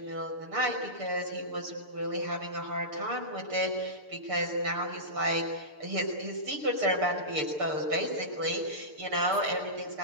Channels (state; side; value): late; left; 6.7 ms